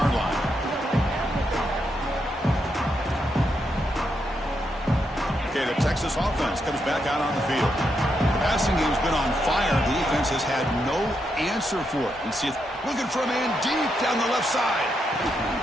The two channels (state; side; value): normal; both; correlation 0.81